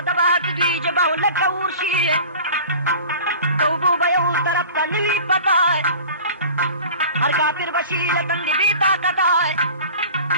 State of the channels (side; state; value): both; inverted; correlation -0.40